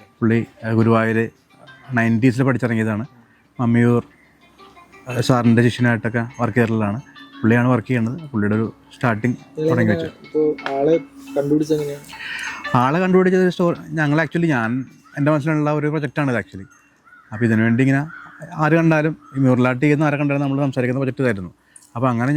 പുള്ളി ഗുരുവായൂർ 90s പഠിച്ചിറങ്ങിയതാണ്. മമ്മിയൂർ സാറിൻ്റെ ശിഷ്യനായിട്ടൊക്കെ വർക്ക് ചെയ്തിട്ടുള്ളതാണ്. പുള്ളിയാണ് വർക്ക് ചെയ്യുന്നത്. പുള്ളിയുടെ ഒരു സ്റ്റാർട്ടിങ് തുടങ്ങി വെച്ചു. ആളെ കണ്ടുപിടിച്ചത് ഞങ്ങൾ ആക്ച്വലി എൻ്റെ മനസ്സിലുള്ള ഒരു പ്രൊജക്റ്റാണ് ഇത് ആക്ച്വലി. അപ്പോൾ ഇതിനു വേണ്ടി ഇങ്ങനെ ആര് കണ്ടാലും ഈ മ്യൂറലായിട്ട് ചെയ്യുന്ന ആരെ കണ്ടാലും നമ്മൾ സംസാരിക്കുന്ന പ്രൊജക്റ്റ് ഇതായിരുന്നു. അപ്പോൾ അങ്ങനെ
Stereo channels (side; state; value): both; identical; correlation 1.00